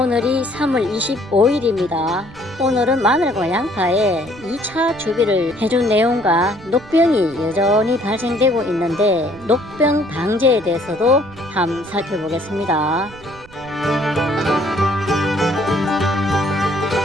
오늘이 3월 25일입니다. 오늘은 마늘과 양파에 2차 주비를 해준 내용과 녹병이 여전히 발생되고 있는데 녹병 방제에 대해서도 한번 살펴보겠습니다.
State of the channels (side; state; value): right; noise; rumble, 21 dB below the sound